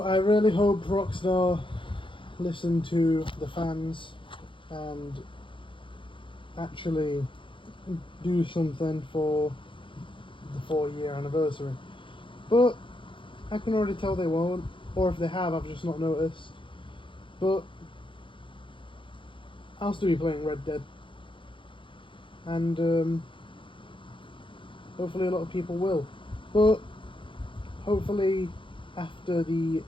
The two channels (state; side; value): late; right; 0.25 ms